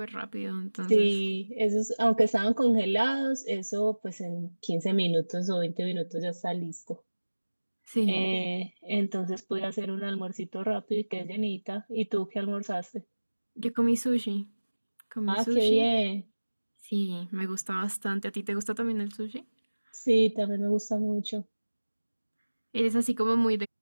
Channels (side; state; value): both; inverted; correlation -1.00